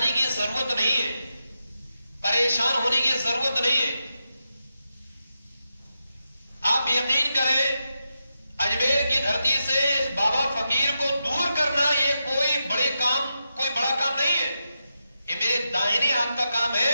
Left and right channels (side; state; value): both; inverted; correlation -0.87